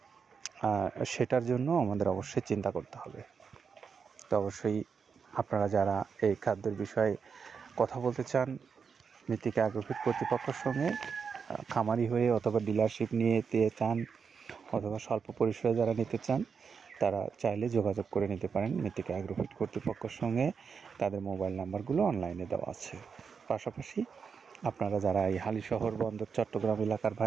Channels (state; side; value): quieter; left; 6.0 dB